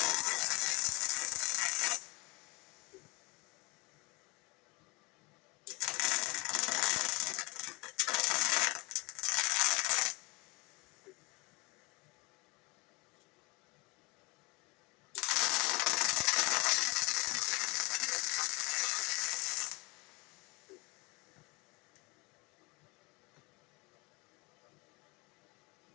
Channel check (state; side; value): quieter; right; 25.6 dB